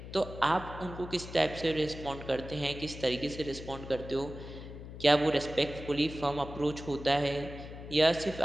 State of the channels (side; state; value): left; noise; hum, 12 dB below the sound